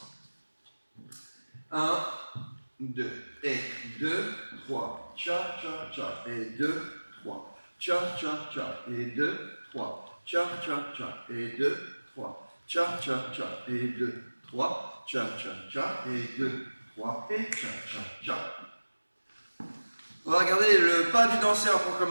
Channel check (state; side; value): inverted; both; correlation -1.00